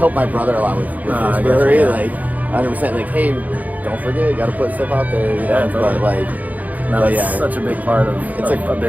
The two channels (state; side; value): late; left; 0.078 ms